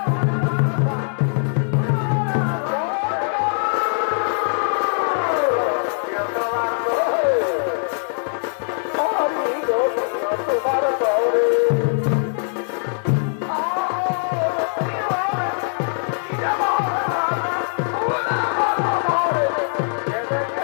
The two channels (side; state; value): right; silent; digital silence